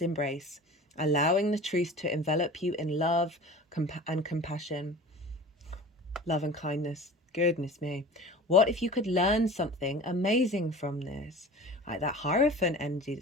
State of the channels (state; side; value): normal; both; correlation 0.39